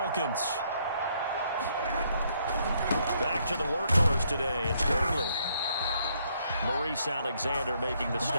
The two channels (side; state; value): both; inverted; correlation -0.71